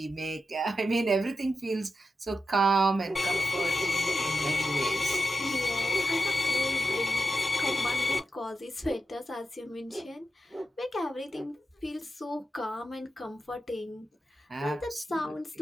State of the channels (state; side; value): normal; both; correlation 0.90